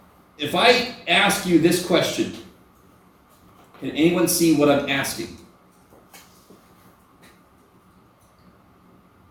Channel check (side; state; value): both; identical; correlation 1.00